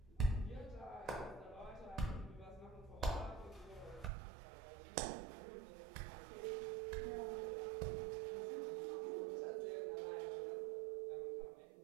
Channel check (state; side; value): drops out; left; at 4.1 s